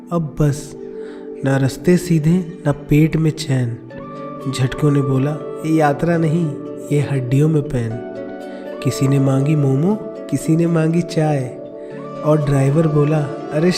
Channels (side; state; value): both; identical; correlation 1.00